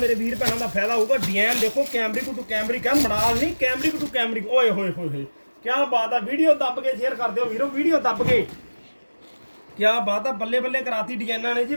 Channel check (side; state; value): both; inverted; correlation -1.00